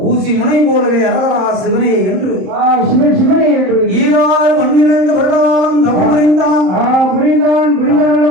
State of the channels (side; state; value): left; late; 27 ms